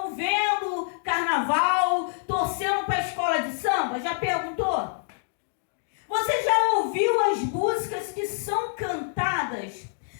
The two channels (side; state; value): right; silent; digital silence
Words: vendo carnaval, torcendo para a escola de samba? Já perguntou? Você já ouviu as músicas que são cantadas?